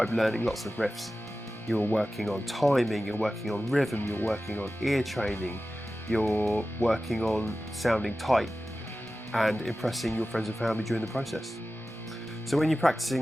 learning lots of riffs. You're working on timing, you're working on rhythm, you're working on ear training, you're working on sounding tight and impressing your friends and family during the process. So when you're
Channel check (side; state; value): both; normal; correlation 0.95